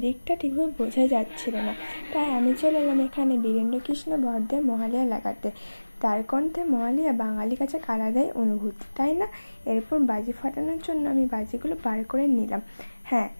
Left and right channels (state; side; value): inverted; both; correlation -1.00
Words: ঠিকভাবে বোঝা যাচ্ছিল না। তাই আমি চলে এলাম এখানে বীরেন্দ্রকৃষ্ণ বর্দের মহালয়া লাগাতে। তার কণ্ঠে মহালয়া বাঙালির কাছে আলাদাই অনুভূতি, তাই না? এরপর বাজি ফাটানোর জন্য আমি বাজিগুলো বার করে নিলাম। হ্যাঁ,